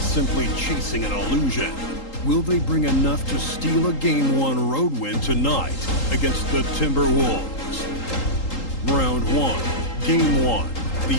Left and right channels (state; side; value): late; right; 3.8 ms